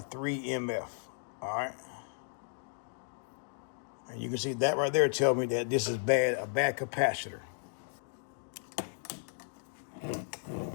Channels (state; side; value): silent; right; digital silence